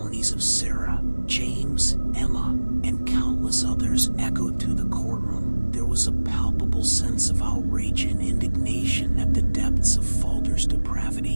of Sarah, James, Emma, and countless others echoed through the courtroom, there was a palpable sense of outrage and indignation at the depths of Falder's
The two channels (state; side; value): inverted; both; correlation -1.00